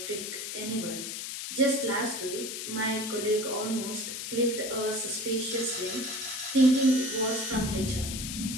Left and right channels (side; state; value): left; noise; hiss, 6 dB below the sound